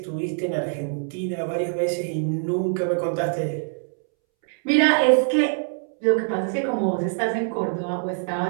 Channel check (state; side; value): silent; left; 63 dB below the other